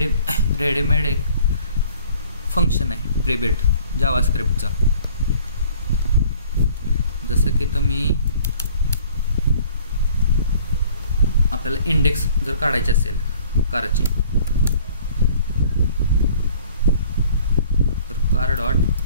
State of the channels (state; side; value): inverted; both; correlation -0.53